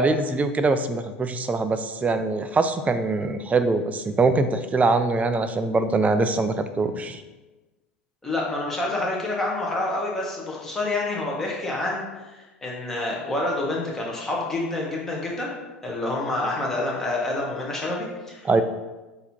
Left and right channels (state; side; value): normal; both; correlation 0.63